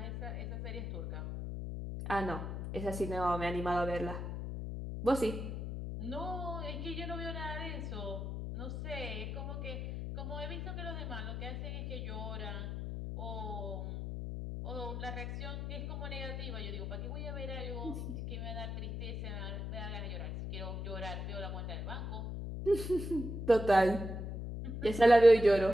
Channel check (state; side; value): noise; left; hum, 5 dB below the sound